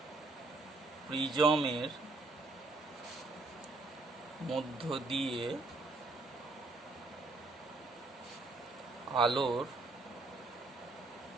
প্রিজমের মধ্য দিয়ে আলোর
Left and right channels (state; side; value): quieter; left; 3.4 dB